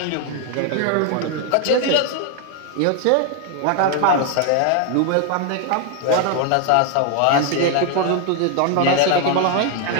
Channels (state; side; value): different; both; correlation 0.00